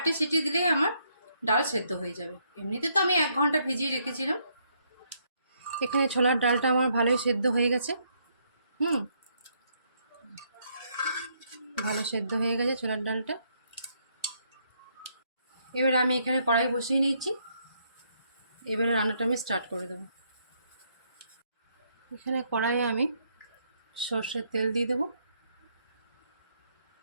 সিটি দিলেই আমার ডাল সেদ্ধ হয়ে যাবে। এমনিতে তো আমি 1 ঘন্টা ভিজিয়ে রেখেছিলাম। এখানে ছোলার ডালটা আমার ভালোই সেদ্ধ হয়ে গেছে। ভালো সেদ্ধ হয়ে গেছে ছোলার ডালটা। এবারে আমি এখানে কড়াই বসিয়ে নিয়েছি, এবারে রান্নাটা আমি স্টার্ট করে দেবো। এখানে কড়াইয়ে আমি সর্ষের তেল দিয়ে দেবো।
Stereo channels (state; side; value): inverted; both; correlation -0.73